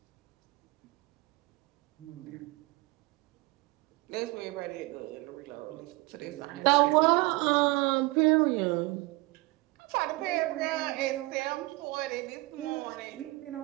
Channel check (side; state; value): left; quieter; 22.7 dB